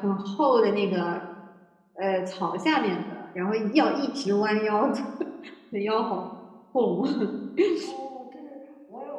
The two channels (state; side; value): identical; both; correlation 1.00